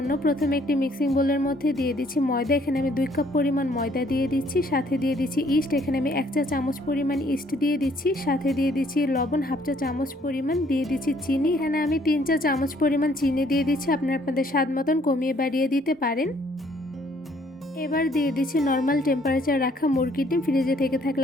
প্রথমে একটি মিক্সিং বোলের মধ্যে দিয়ে দিচ্ছি ময়দা। এখানে আমি 2 কাপ পরিমাণ ময়দা দিয়ে দিচ্ছি। সাথে দিয়ে দিচ্ছি ইস্ট। এখানে আমি 1 চা চামচ পরিমাণ ইস্ট দিয়ে দিচ্ছি। সাথে দিয়ে দিচ্ছি লবণ 1/2 চা চামচ পরিমাণ, দিয়ে দিচ্ছি চিনি। এখানে আমি 3 চা চামচ পরিমাণ চিনি দিয়ে দিচ্ছি। আপনারা আপনাদের স্বাদ মতন কমিয়ে বাড়িয়ে দিতে পারেন। এবার দিয়ে দিচ্ছি নর্মাল টেম্পারেচার রাখা মুরগির ডিম, ফ্রিজে থেকে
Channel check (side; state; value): both; normal; correlation 0.64